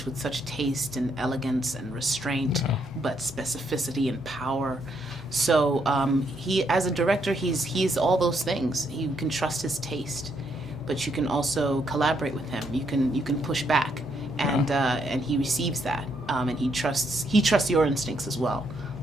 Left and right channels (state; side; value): normal; both; correlation 0.75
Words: with such taste and elegance and restraint, but specificity and power. So he, as a director, he's all those things. You can trust his taste, but you can also collaborate with him. You can push back, and he receives that, and he trusts your instincts as well.